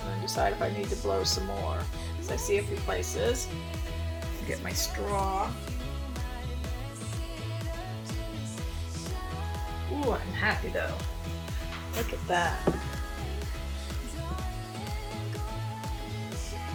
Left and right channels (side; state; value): both; identical; correlation 1.00